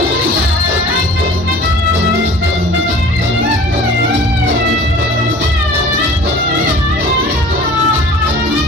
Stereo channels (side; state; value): both; normal; correlation 0.45